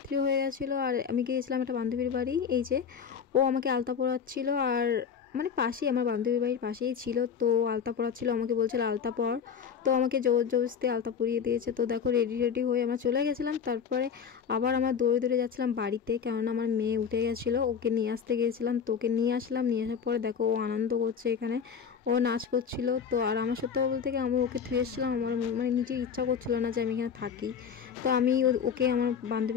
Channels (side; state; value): right; quieter; 7.0 dB